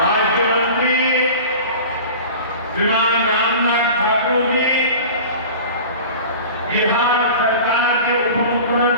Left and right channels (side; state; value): both; inverted; correlation -0.37